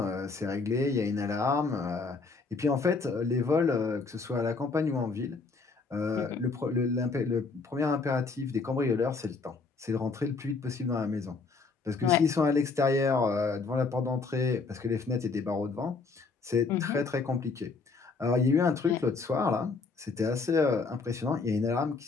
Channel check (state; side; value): quieter; right; 4.3 dB